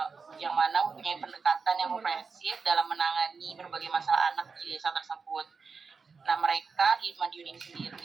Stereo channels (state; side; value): quieter; left; 5.0 dB